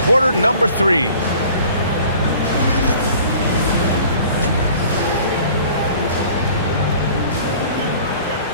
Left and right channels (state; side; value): inverted; both; correlation -0.49